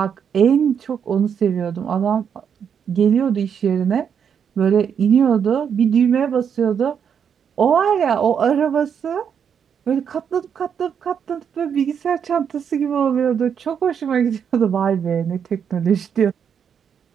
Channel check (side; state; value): left; quieter; 7.6 dB